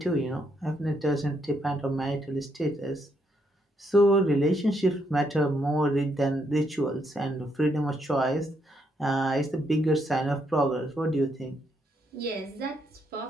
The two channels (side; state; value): both; normal; correlation 0.76